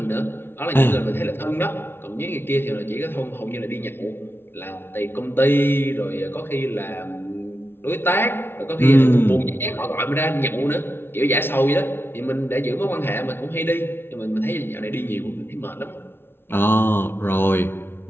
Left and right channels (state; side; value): late; right; 0.11 ms